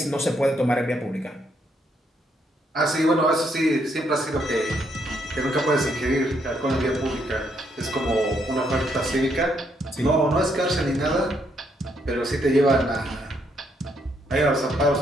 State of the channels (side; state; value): both; normal; correlation 0.74